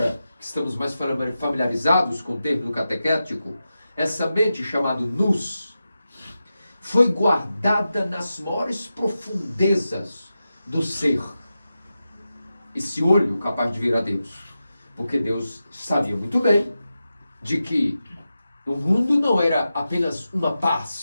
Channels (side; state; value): both; inverted; correlation -0.91